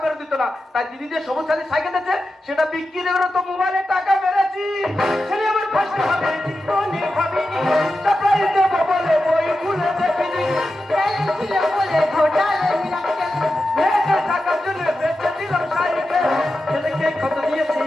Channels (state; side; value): normal; both; correlation 0.91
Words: বেরো দিত না, তাই দিদি যে সবুজ সাথী সাইকেল দিয়েছে সেটা বিক্রি করে তো মোবাইলের টাকা বেড়েছি। ছেলে আমার ফার্স্ট হবে জীবনে ভাবিনি, সারপ্রাইজ দেবো বলে বই খুলে দেখিনি। ট্যালেন্ট ছিল বলে ঘোটালে রাখে। নেটের টাকার জন্য বেচে দিলাম সাইকেল। ছেলেকে কত দিয়েছি